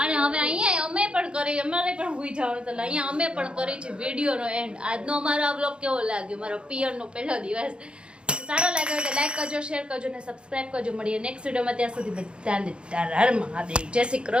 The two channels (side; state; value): left; late; 0.055 ms